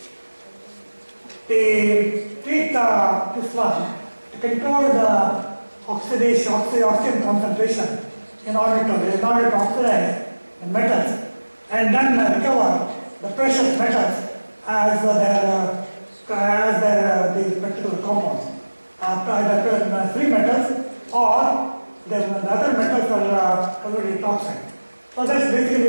they treat this one to control the oxidation concentration in order to oxidize the metals, and then recover the precious metals as these particular compounds. Either free metals or the other metals are already toxic. So that's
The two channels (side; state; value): both; inverted; correlation -1.00